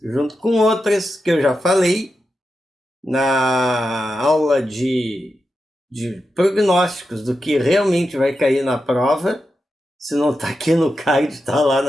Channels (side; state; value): both; normal; correlation 0.89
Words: junto com outras que eu já falei na aula de prognósticos do que realmente vai cair na prova. Se não está aqui no card, está lá